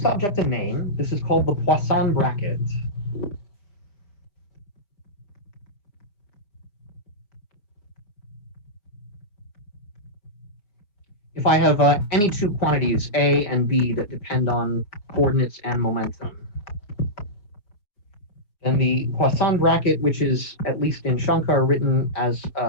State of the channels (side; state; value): right; late; 4.9 ms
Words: object a name. This is called the Poisson bracket. If I have any two quantities, A and B, that depend on coordinates and momentum, then the Poisson bracket, which is, at least in Shankar, written as